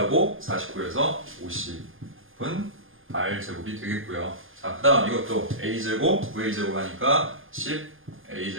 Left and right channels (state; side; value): late; left; 0.59 ms